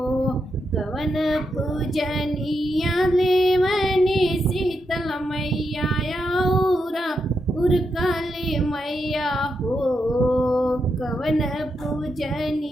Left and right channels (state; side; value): normal; both; correlation 0.84